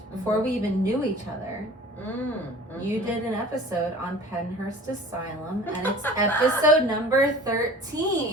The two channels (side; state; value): both; normal; correlation 0.44